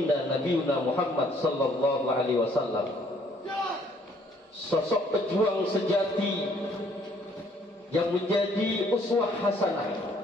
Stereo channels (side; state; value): both; normal; correlation 0.63